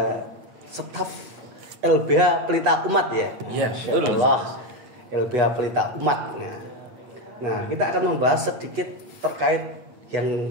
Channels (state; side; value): late; left; 8.2 ms